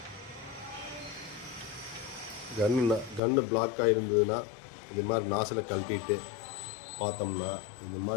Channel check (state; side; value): drops out; right; at 3.2 s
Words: கன்று பிளாக் ஆகிருந்ததுன்னா இது மாதிரி நாசில் கழட்டிட்டு பார்த்தோம்னா இந்த